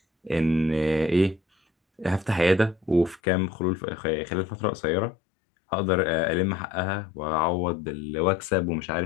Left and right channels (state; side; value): drops out; right; at 3.2 s